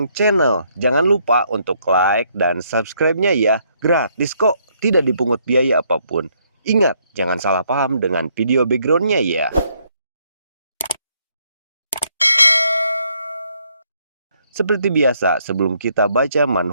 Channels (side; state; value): both; inverted; correlation -0.71